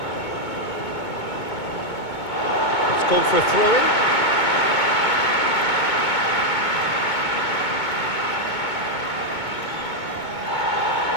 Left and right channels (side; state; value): right; late; 2.2 ms